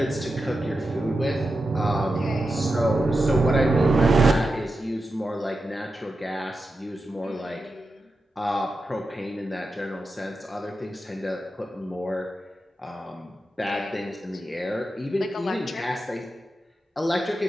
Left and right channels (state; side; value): normal; both; correlation 0.90